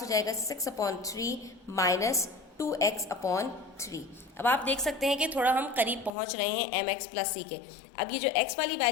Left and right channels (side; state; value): right; drops out; at 6.1 s